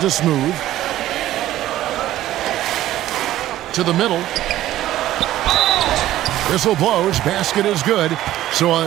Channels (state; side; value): quieter; left; 14.0 dB